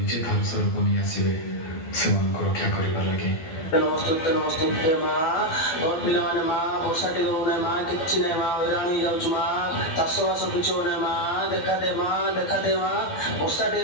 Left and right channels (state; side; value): late; right; 12 ms